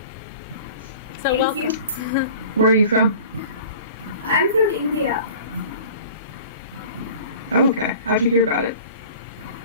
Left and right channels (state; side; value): inverted; both; correlation -0.43